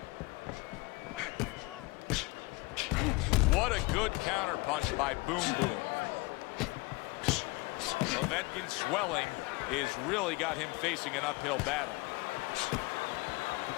What a good counter punch by Boom Boom. Povetkin's swelling has really got him facing an uphill battle.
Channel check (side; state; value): right; quieter; 24.9 dB